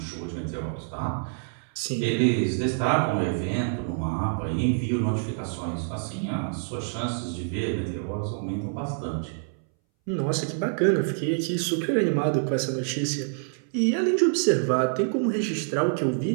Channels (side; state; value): left; silent; 60 dB below the other